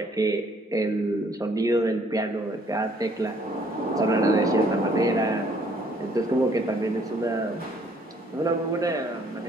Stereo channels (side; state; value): both; normal; correlation 0.63